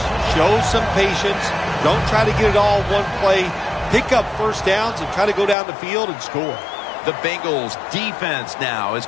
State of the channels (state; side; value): drops out; right; at 5.6 s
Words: Show some patience. Don't try to get it all one play. Pick up first downs and try to go down the field and score. The Bengals defense now is